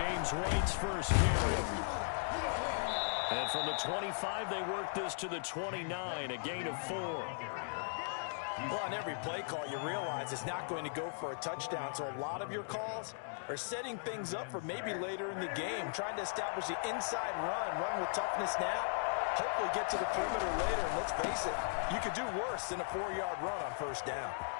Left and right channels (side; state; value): right; silent; digital silence